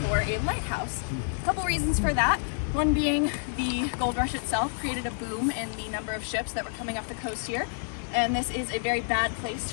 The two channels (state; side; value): silent; right; 59 dB below the other